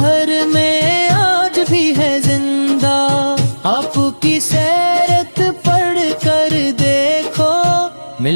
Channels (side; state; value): both; inverted; correlation -1.00